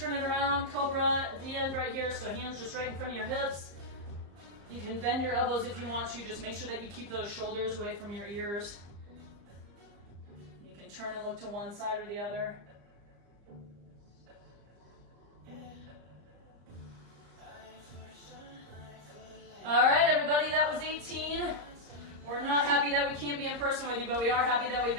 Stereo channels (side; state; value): left; late; 35 ms